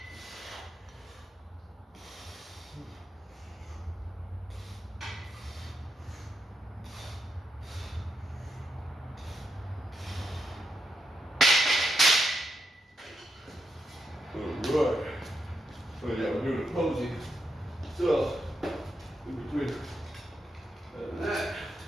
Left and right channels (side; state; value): both; normal; correlation 0.83